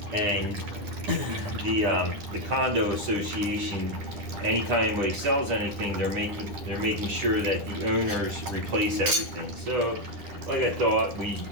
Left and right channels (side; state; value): left; late; 10 ms